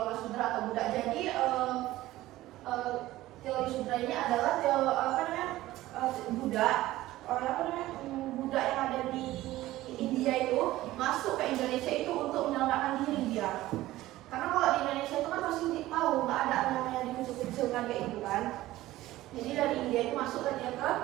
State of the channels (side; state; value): left; quieter; 16.3 dB